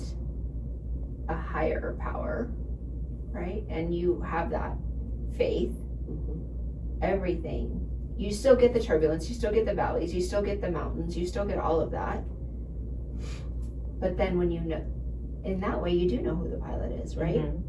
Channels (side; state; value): both; identical; correlation 1.00